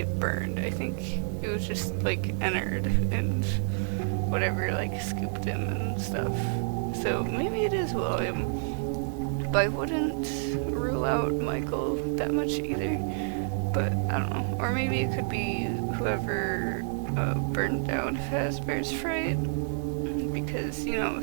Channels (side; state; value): left; silent; digital silence